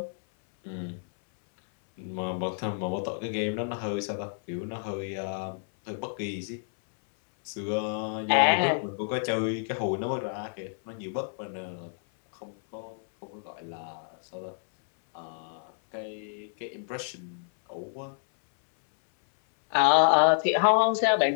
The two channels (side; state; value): right; silent; 59 dB below the other